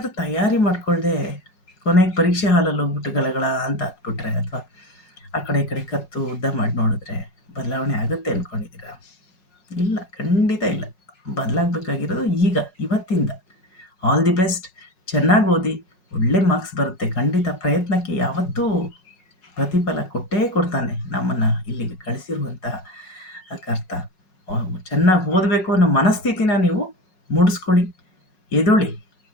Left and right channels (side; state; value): right; late; 5.5 ms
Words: ತಯಾರಿ ಮಾಡಿಕೊಳ್ಳದೆ ಕೊನೆಗೆ ಪರೀಕ್ಷೆ ಹಾಲಲ್ಲಿ ಹೋಗ್ಬಿಟ್ಟು ಗಲಗಳ ಅಂತ ಹತ್ಬಿಟ್ರೆ, ಅಥವಾ ಆ ಕಡೆ ಈ ಕಡೆ ಕತ್ತು ಉದ್ದ ಮಾಡಿ ನೋಡಿದ್ರೆ ಬದಲಾವಣೆ ಆಗುತ್ತೆ ಅಂದ್ಕೊಂಡಿದ್ದೀರಾ? ಇಲ್ಲ, ಖಂಡಿತ ಇಲ್ಲ. ಬದಲಾಗಬೇಕಾಗಿರೋದು ಈಗ, ಇವತ್ತಿಂದ. All the best. ಚೆನ್ನಾಗಿ ಓದಿ, ಒಳ್ಳೆ ಮಾರ್ಕ್ಸ್ ಬರುತ್ತೆ ಖಂಡಿತ. ಪ್ರಯತ್ನಕ್ಕೆ ಯಾವತ್ತೂ ಪ್ರತಿಫಲ ಕೊಟ್ಟೇ ಕೊಡ್ತಾನೆ ನಮ್ಮನ್ನು ಇಲ್ಲಿಗೆ ಕಳಿಸಿರುವಂಥ ಕರ್ತ. ಚೆನ್ನಾಗಿ ಓದಬೇಕು ಅನ್ನೋ ಮನಸ್ಥಿತಿನ ನೀವು ಮೂಡಿಸ್ಕೊಳ್ಳಿ. ಎದ್ದೇಳಿ,